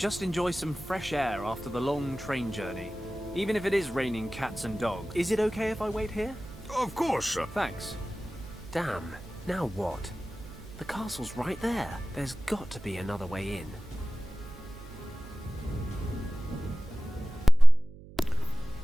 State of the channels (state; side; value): noise; right; hum, 18 dB below the sound